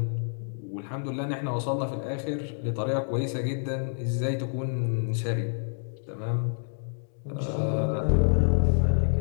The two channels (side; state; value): right; silent; digital silence